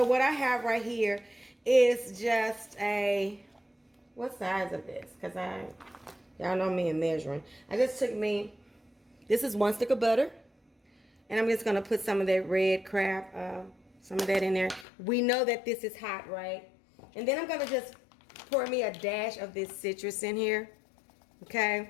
what I have right here is just what size of this? Because y'all know me in measuring. I just took this is 1 stick of butter. And I'm just going to put some of that red crab, some of that in there. We know that this is hot, right? And then I'm going to just pour me a dash of this citrus in here.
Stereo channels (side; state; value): right; drops out; at 14.9 s